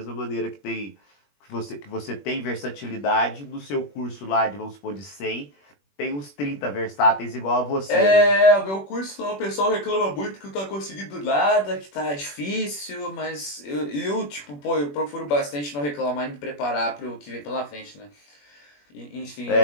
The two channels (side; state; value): right; late; 21 ms